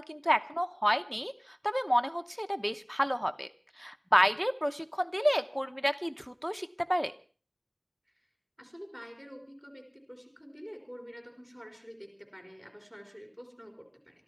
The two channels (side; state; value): both; identical; correlation 1.00